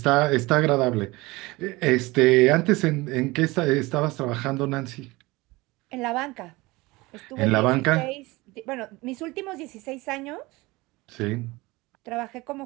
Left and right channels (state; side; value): quieter; left; 21.9 dB